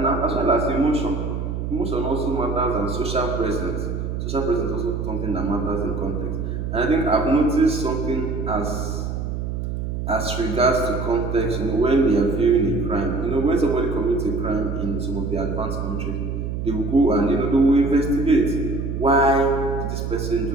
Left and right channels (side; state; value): right; noise; hum, 4 dB below the sound